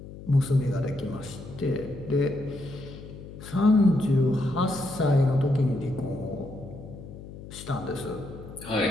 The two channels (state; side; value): noise; left; hum, 14 dB below the sound